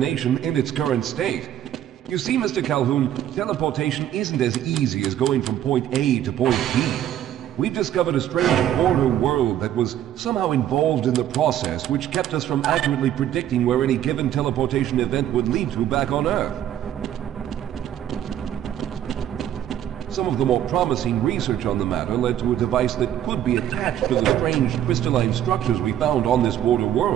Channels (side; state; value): left; quieter; 11.3 dB